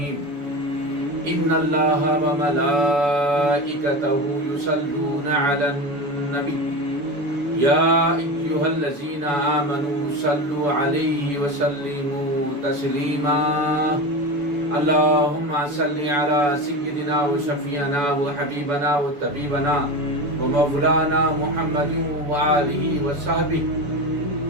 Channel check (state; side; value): late; left; 6.9 ms